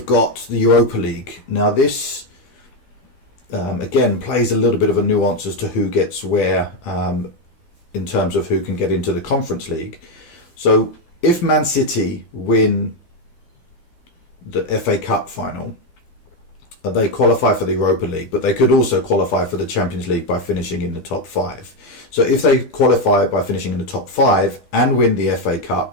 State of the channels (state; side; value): late; right; 13 ms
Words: got the Europa League. Now this, again, plays a little bit of a nuance as to who gets where in terms of who can get into the Conference League. So if Man City win the FA Cup final, they qualify for the Europa League, but they could also qualify for the Champions League by finishing in the top 5. So if they qualify by finishing in the top 5 and win the FA